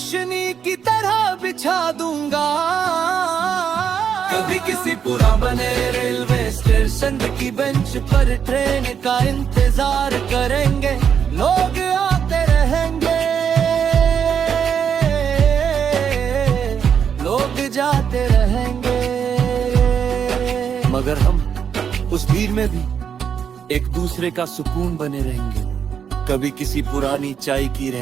की तरह बिछा दूंगा। कभी किसी पुराने रेलवे स्टेशन की बेंच पर ट्रेन का इंतजार करेंगे, लोग आते रहेंगे, लोग जाते रहेंगे, मगर हम उस भीड़ में भी एक दूसरे का सुकून बने रहेंगे। कभी किसी पुरानी चाय की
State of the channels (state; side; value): quieter; left; 7.7 dB